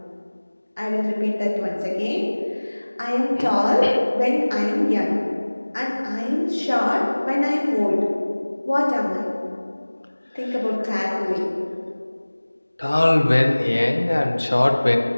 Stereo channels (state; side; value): inverted; both; correlation -1.00